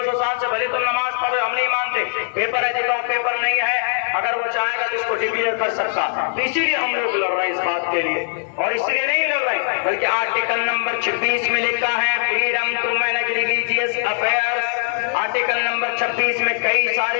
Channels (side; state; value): right; silent; digital silence